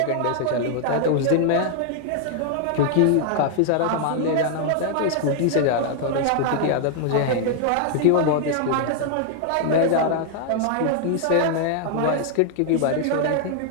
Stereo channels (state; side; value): different; both; correlation -0.01